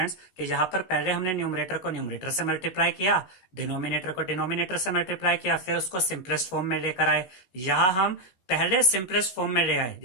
कि यहाँ पर पहले हमने न्यूमरेटर को न्यूमरेटर से मल्टीप्लाई किया, डिनोमिनेटर को डिनोमिनेटर से मल्टीप्लाई किया, फिर उसको सिंपलेस्ट फॉर्म में लेकर आए। यहाँ हम पहले सिंपलेस्ट फॉर्म में ले आए,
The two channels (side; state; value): right; late; 16 ms